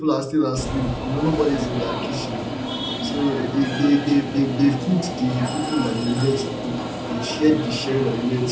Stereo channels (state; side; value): identical; both; correlation 1.00